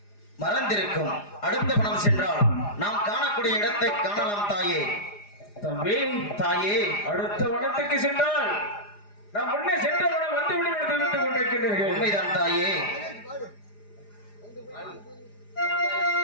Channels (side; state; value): right; late; 4.9 ms